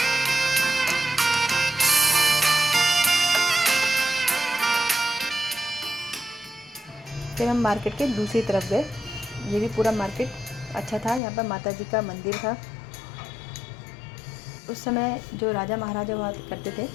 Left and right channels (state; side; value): drops out; right; at 11.2 s